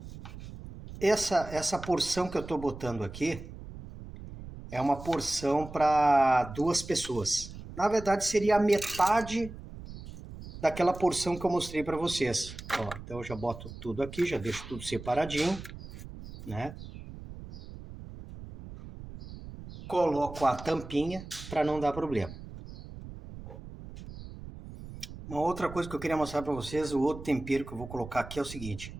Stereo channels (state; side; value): noise; right; rumble, 13 dB below the sound